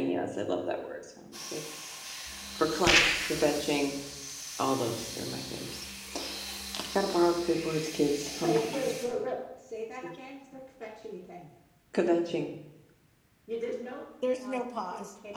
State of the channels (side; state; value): both; identical; correlation 1.00